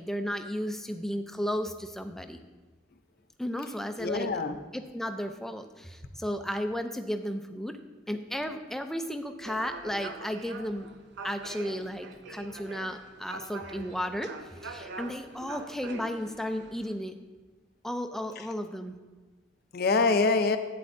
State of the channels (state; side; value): normal; both; correlation 0.47